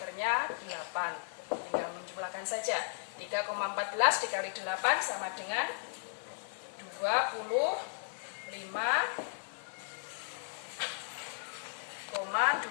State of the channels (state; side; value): silent; right; digital silence